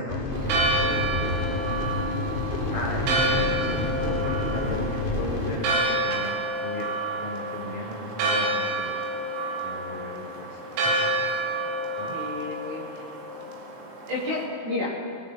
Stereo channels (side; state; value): left; late; 21 ms